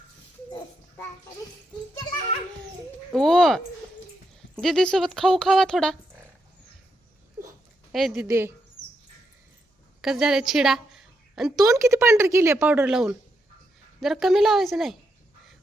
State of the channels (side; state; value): both; normal; correlation 0.81